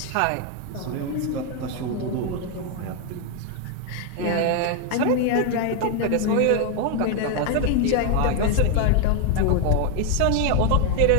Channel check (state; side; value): different; both; correlation 0.01